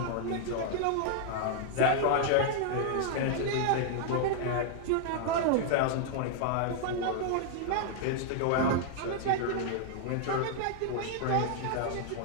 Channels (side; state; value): both; different; correlation -0.01